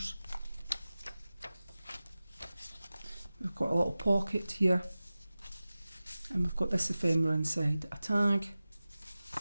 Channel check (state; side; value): inverted; both; correlation -0.96